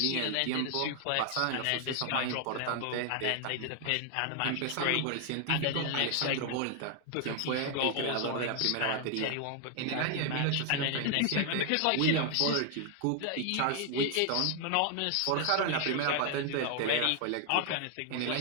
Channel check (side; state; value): both; different; correlation 0.00